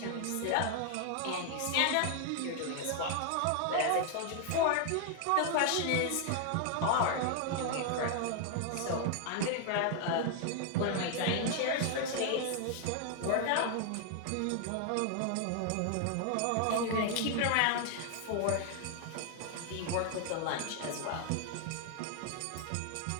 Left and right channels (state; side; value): different; both; correlation 0.00